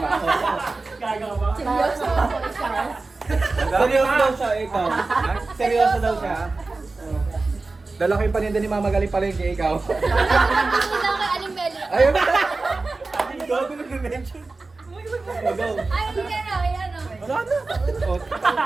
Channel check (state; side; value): quieter; left; 3.6 dB